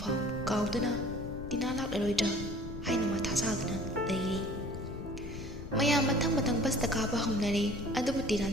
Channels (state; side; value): noise; left; rumble, 10 dB below the sound